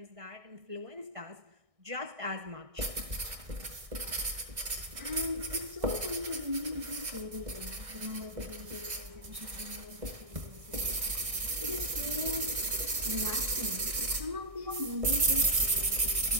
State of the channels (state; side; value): late; left; 1.6 ms